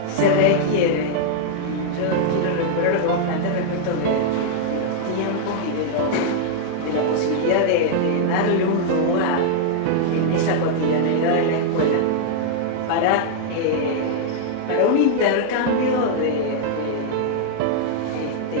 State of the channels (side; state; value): both; different; correlation -0.01